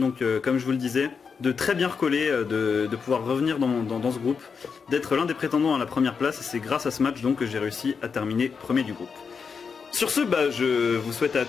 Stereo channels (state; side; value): quieter; right; 5.7 dB